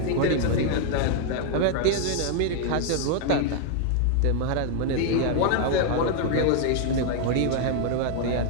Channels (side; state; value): both; different; correlation 0.00